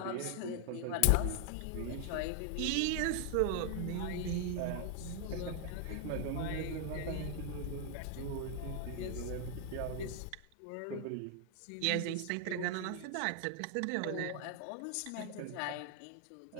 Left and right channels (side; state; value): both; different; correlation 0.00